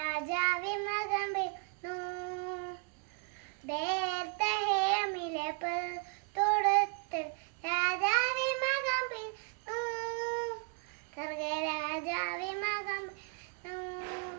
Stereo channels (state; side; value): quieter; left; 39.0 dB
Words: മകം വീണു. ബേത്ലഹേമിലെ തോടത്തിൽ രാജാവേ മകം വീണു. സ്വർഗ രാജാവേ മകം വീണു.